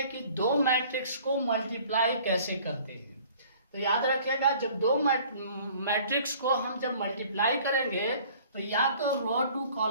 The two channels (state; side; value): inverted; both; correlation -0.52